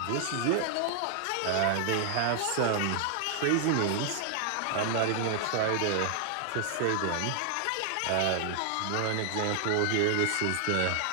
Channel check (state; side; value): different; both; correlation 0.00